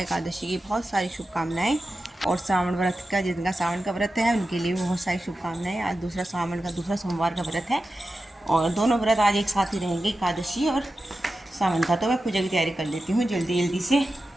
की बहुत सारी शुभकामनाएं। और सावन व्रत का, जिनका सावन का व्रत है उनके लिए बहुत सारी शुभकामनाएं। आज दूसरा सावन का दूसरा सोमवार का व्रत है और दोनों व्रत आज एक साथ ही रहेंगे, एकादशी और सावन का। तो मैं पूजा की तैयारी कर लेती हूँ जल्दी जल्दी से।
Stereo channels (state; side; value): normal; both; correlation 0.92